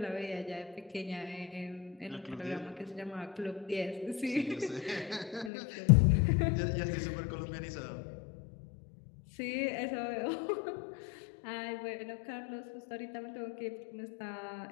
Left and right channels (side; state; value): right; drops out; at 5.5 s